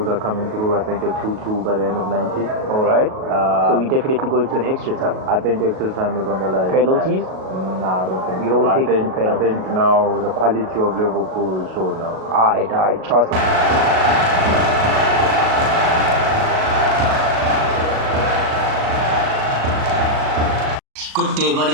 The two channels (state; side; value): late; left; 37 ms